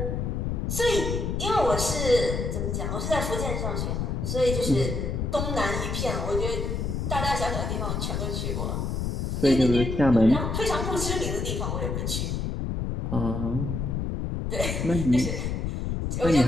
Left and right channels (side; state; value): left; noise; rumble, 1 dB below the sound